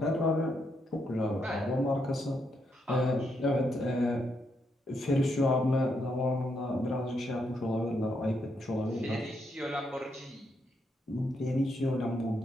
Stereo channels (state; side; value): normal; both; correlation 0.78